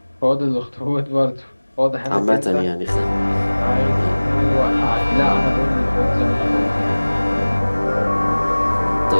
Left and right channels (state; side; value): inverted; both; correlation -1.00